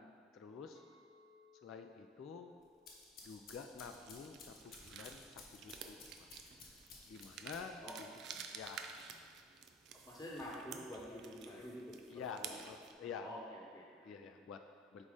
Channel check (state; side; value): normal; both; correlation 0.36